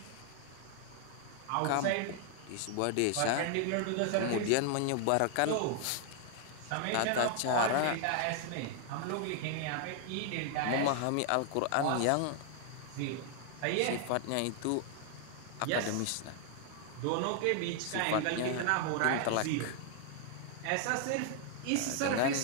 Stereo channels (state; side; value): different; both; correlation 0.00